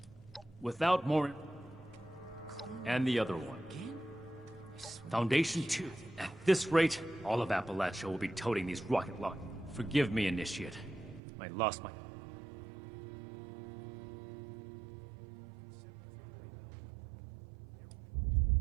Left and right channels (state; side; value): drops out; left; at 11.2 s